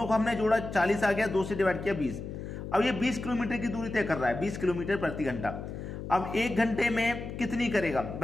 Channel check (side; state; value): left; noise; hum, 8 dB below the sound